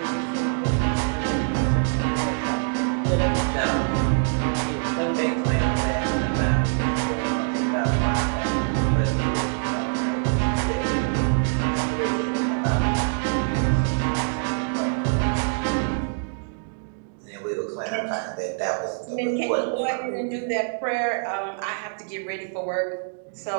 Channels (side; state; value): left; silent; digital silence